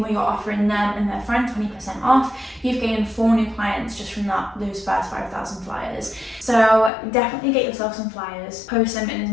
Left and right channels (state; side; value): drops out; right; at 6.9 s